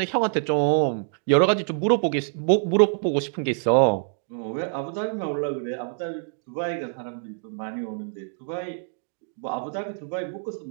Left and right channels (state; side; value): silent; left; digital silence